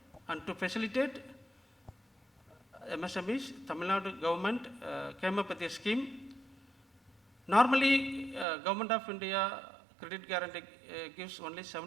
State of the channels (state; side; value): drops out; left; at 8.5 s